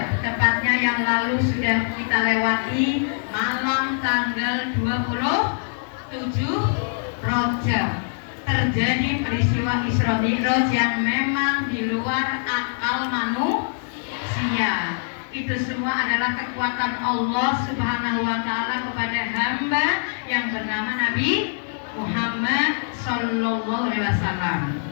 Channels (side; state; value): right; silent; digital silence